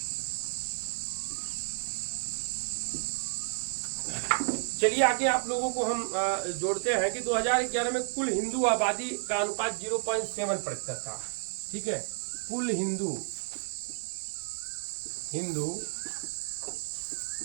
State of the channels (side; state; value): left; silent; 57 dB below the other